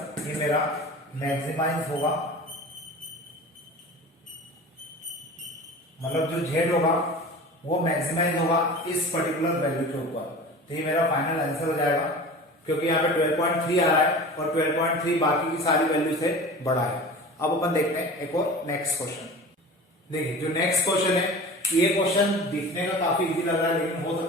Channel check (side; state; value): both; normal; correlation 0.37